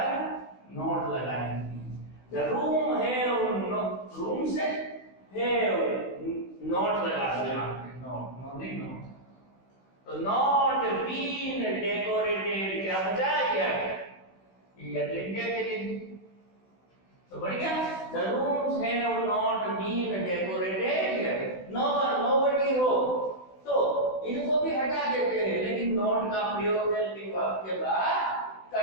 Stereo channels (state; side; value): late; right; 16 ms